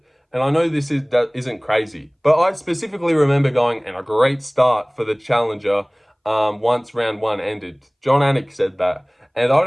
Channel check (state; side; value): identical; both; correlation 1.00